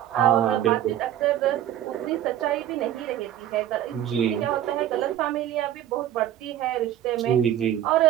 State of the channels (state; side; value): quieter; left; 11.5 dB